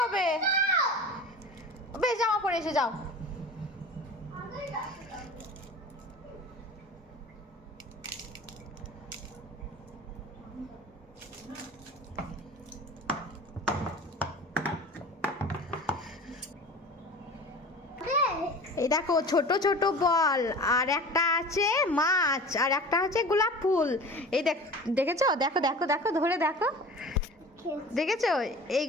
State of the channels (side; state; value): both; normal; correlation 0.38